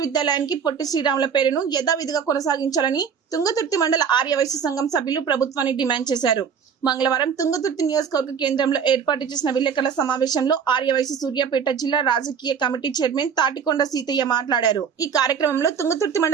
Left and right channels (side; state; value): left; quieter; 7.0 dB